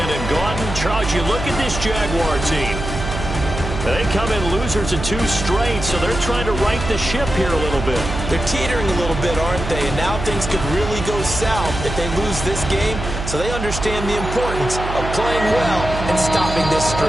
Gaudin. Charles, you look at this Jaguar team. They come in losers of 2 straight, so they're trying to right the ship here a little bit. They're teetering a little bit, aren't they? And now things could really go south if they lose this game, so they understand the importance of playing well and stopping this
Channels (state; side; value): noise; right; hum, 6 dB below the sound